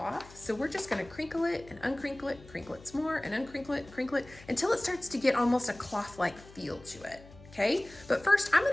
So we're just gonna crinkle it and crinkle it some more, and crinkle it, until it starts to get almost a cloth-like feel to it. Okay, but first I'm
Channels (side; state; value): left; noise; hum, 21 dB below the sound